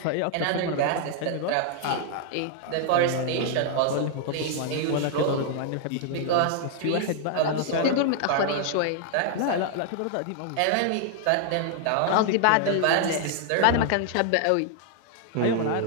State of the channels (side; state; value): both; different; correlation -0.01